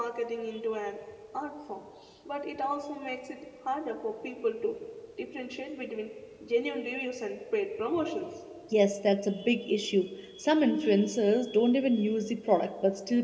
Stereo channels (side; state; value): both; identical; correlation 1.00